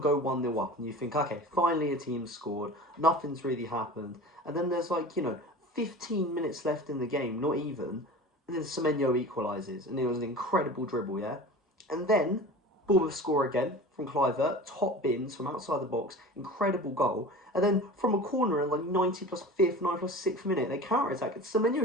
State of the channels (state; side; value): normal; both; correlation 0.36